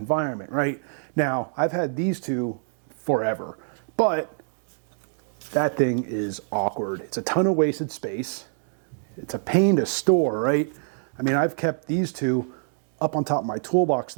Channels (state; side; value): silent; left; digital silence